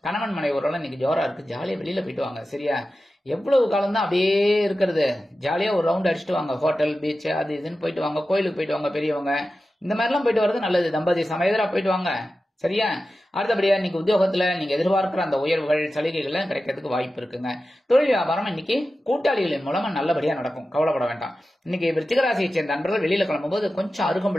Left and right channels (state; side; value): normal; both; correlation 0.93